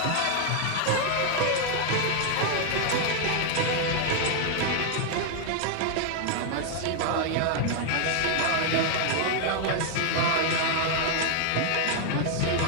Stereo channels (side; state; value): both; different; correlation 0.00